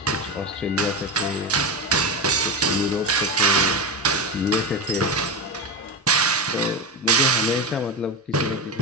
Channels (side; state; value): both; normal; correlation 0.18